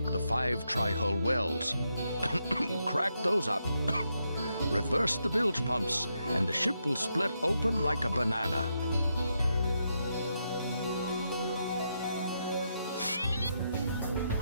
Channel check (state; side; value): inverted; both; correlation -0.82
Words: the 5 tri-hull wells. Crack those up. Reverse the bilge pumps, and the ship will split open like a banana.